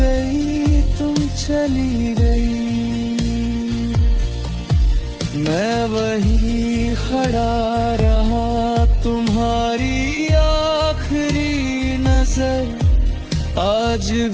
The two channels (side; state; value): both; identical; correlation 1.00